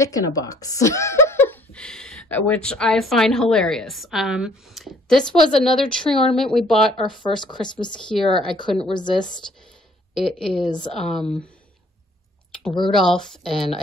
in a Box, which I find hilarious. This was another tree ornament we bought our first Christmas here. I couldn't resist. It is Rudolph and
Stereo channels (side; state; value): both; normal; correlation 0.59